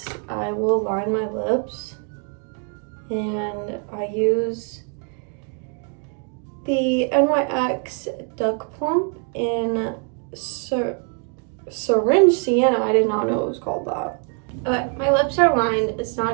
I will line my lips, and I use the NYX Duck Plump in Syringe Sienna. I did not know it was called that. Okay, my lips are lined. It's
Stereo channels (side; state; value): left; quieter; 39.8 dB